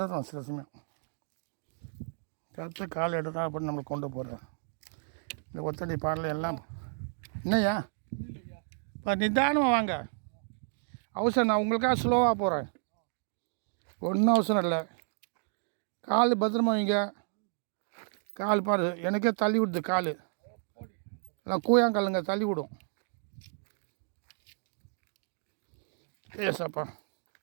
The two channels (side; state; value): left; silent; digital silence